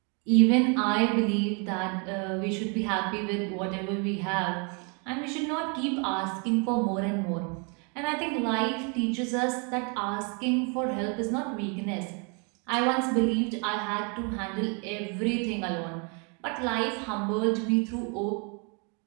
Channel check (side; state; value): left; quieter; 35.4 dB